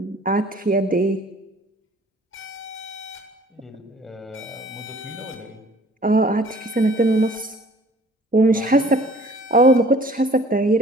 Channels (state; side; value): normal; both; correlation 0.53